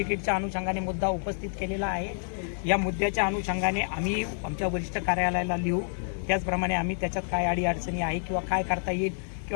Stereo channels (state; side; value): silent; right; digital silence